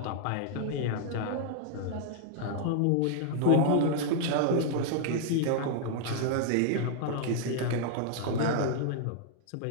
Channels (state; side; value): different; both; correlation -0.01